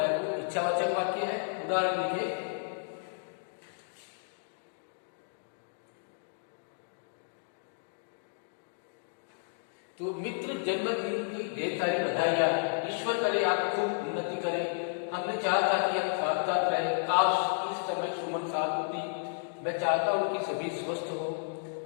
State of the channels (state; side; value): silent; right; digital silence